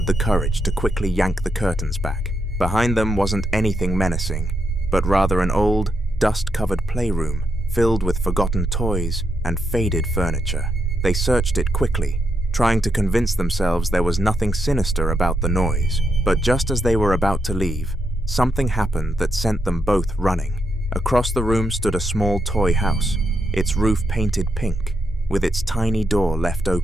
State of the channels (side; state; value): both; normal; correlation 0.81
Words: the courage to quickly yank the curtains back. Behind them wasn't anything menacing, but rather an old, dust-covered playroom filled with forgotten toys and faded furniture. They searched it quickly, trying to convince themselves there was nothing sinister about the noise. But just as they were about to leave, something happened that sent them both running. Across the room stood a small toy house, its roof painted pink, with its tiny door left